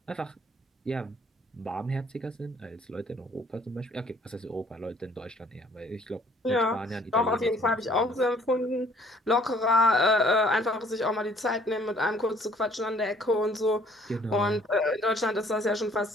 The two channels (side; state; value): both; normal; correlation 0.58